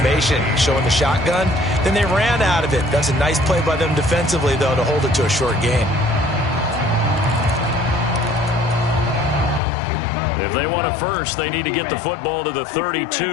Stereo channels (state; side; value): drops out; right; at 9.6 s